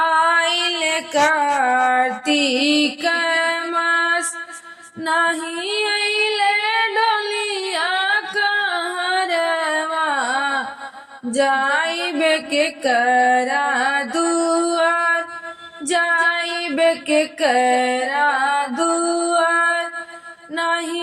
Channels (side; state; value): both; identical; correlation 1.00